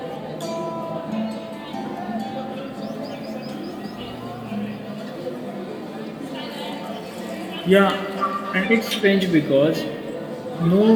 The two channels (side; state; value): both; identical; correlation 1.00